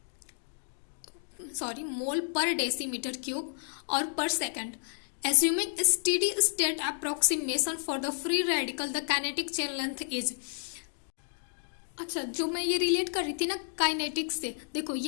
mole per decimeter cube or per second. Assuming a steady state approximation for the free radical, the kinetic chain length is। अच्छा जो मैं ये रिलेट कर रही थी ना काइनेटिक्स से, देखो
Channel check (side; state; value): right; silent; digital silence